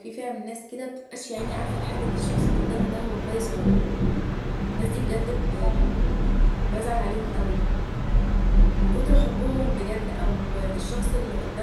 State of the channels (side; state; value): both; identical; correlation 1.00